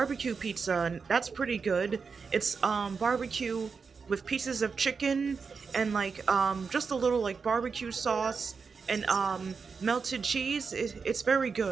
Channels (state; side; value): quieter; left; 5.3 dB